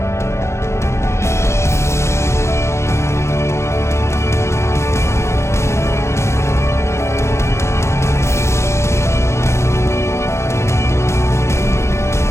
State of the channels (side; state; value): right; late; 0.13 ms